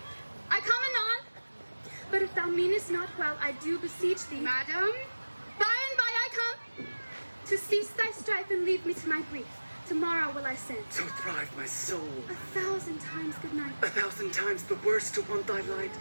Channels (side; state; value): both; inverted; correlation -1.00